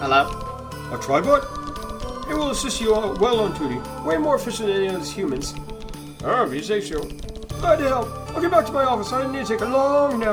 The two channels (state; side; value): identical; both; correlation 1.00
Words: A tribot? He will assist you well on duty. Way more efficient than any of us humans. Oh, if you say so. Glad to help. I'll get back to my office. I need to take a long